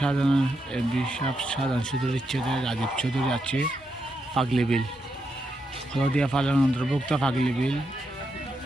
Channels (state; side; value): normal; both; correlation 0.83